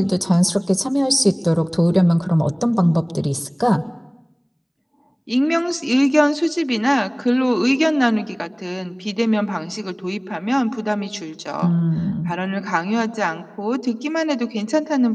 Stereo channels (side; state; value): both; identical; correlation 1.00